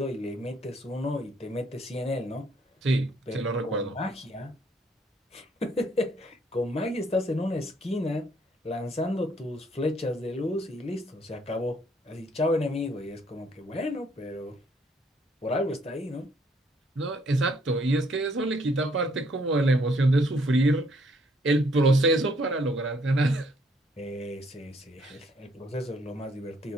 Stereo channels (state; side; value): normal; both; correlation 0.66